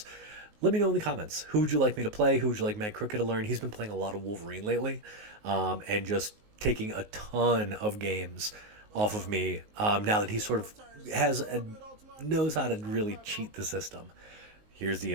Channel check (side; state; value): left; late; 19 ms